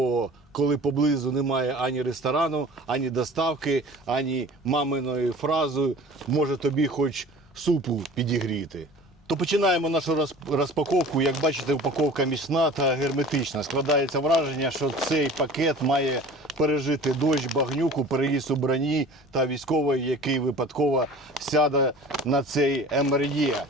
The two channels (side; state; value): both; normal; correlation 0.42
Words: коли поблизу немає ані ресторану, ані доставки, ані маминої фрази «може тобі хоч супу підігріти». То починаємо нашу розпаковку. Як бачите, упаковка міцна та герметична. Складається враження, що цей пакет має пережити дощ, багнюку, переїзд у броні та військовий, який випадково сяде на цей МРЄ.